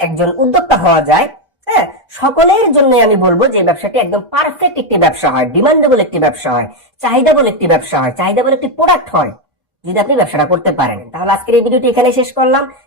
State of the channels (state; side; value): normal; both; correlation 0.06